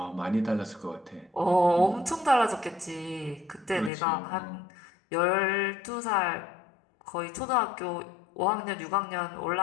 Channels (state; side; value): drops out; right; at 3.9 s